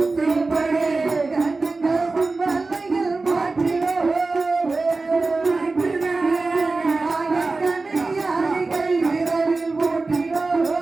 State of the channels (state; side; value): quieter; left; 3.6 dB